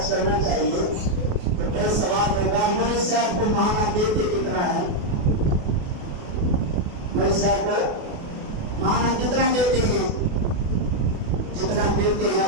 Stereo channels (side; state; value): left; late; 28 ms